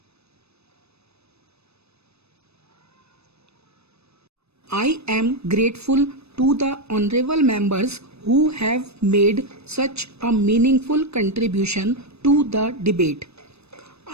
I am grateful to the honorable members who have made such a meaningful contribution to the debate.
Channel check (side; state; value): left; late; 0.79 ms